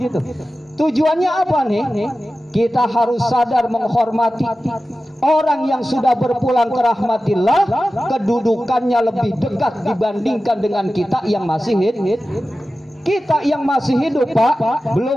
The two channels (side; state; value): both; normal; correlation 0.94